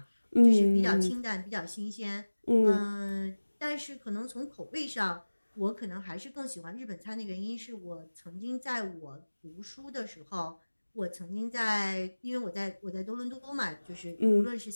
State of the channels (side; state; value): both; inverted; correlation -1.00